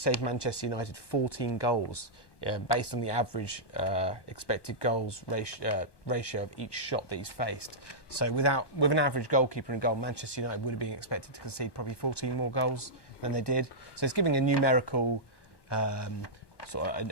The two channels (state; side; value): late; right; 1.2 ms